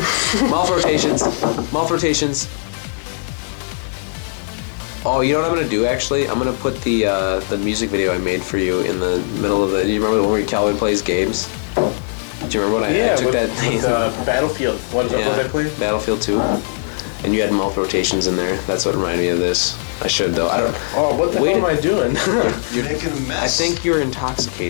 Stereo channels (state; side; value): silent; right; 67 dB below the other